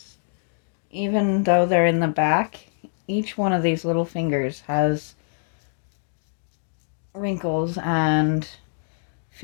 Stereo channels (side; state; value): right; silent; digital silence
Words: Even though they're in the back, each one of these little fingers has wrinkles and